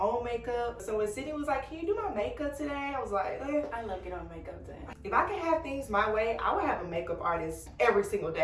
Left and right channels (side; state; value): both; identical; correlation 1.00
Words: makeup. So when Sydney was like, can you do my makeup today? I was like, I love getting on makeup today. If I could have things my way, I would have a makeup artist every single